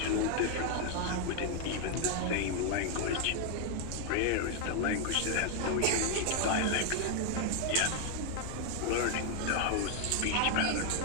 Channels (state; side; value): different; both; correlation 0.01